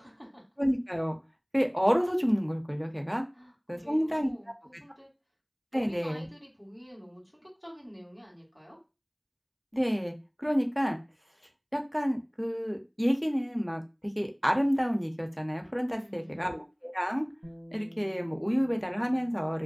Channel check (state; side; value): identical; both; correlation 1.00